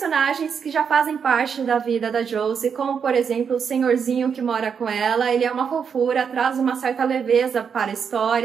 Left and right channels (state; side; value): quieter; left; 6.8 dB